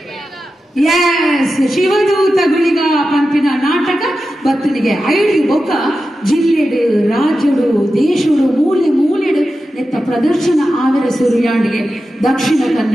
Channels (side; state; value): both; normal; correlation 0.92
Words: ಎಸ್ ಶಿವದೂತ ಗುಳಿಗ ಪಂಪಿನ ನಾಟಕ ಬತ್ತನಿಗೆ ಐದು ಬೊಕ್ಕ ಜಿಲ್ಲೆಡು ರಾಜ್ಯಡು ದೇಶಡು ಮೂಲೆ ಮೂಲೆಡು ನೆತ್ತ ಪ್ರದರ್ಶನ ಆವರ ಸುರಿಯಾಂಡಿಗೆ ದಕ್ಷಿಣ